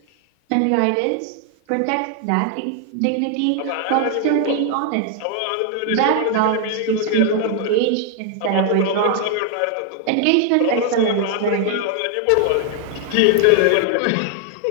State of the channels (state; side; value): different; both; correlation 0.00